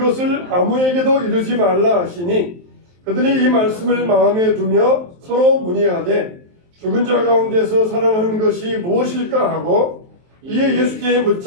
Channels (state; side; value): late; left; 23 ms